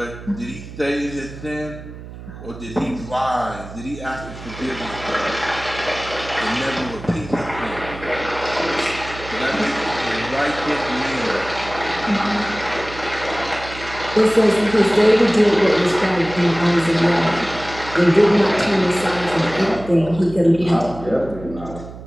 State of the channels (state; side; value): noise; right; hum, 14 dB below the sound